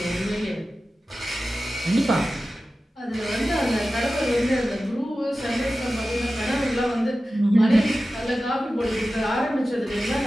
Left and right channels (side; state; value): both; normal; correlation 0.94